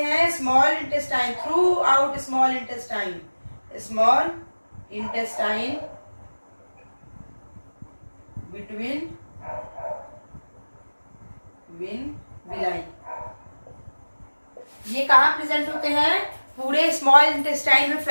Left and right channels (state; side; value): inverted; both; correlation -1.00